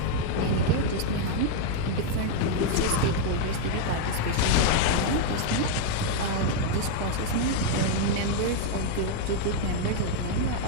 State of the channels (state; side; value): different; both; correlation 0.00